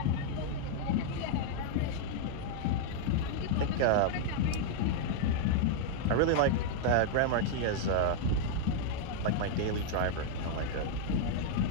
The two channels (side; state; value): both; different; correlation -0.01